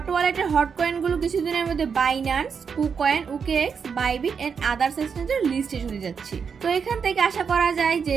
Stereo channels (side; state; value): left; quieter; 6.3 dB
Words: ওয়ালেটের হট কয়েন গুলো কিছুদিনের মধ্যে Binance, KuCoin, OKX, Bybit and others এক্সচেঞ্জের লিস্টে চলে যাচ্ছে। তো এখান থেকে আশা করা যায় যে